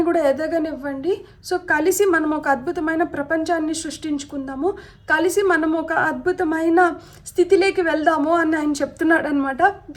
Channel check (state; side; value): identical; both; correlation 1.00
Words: కూడా ఎదగనివ్వండి. సో కలిసి మనం ఒక అద్భుతమైన ప్రపంచాన్ని సృష్టించుకుందాము, కలిసి మనం ఒక అద్భుతమైన స్థితిలోకి వెళ్దాము అని ఆయన చెప్తున్నాడు అనమాట.